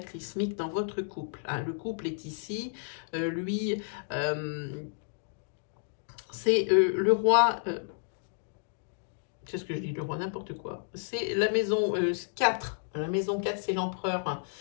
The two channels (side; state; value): right; silent; digital silence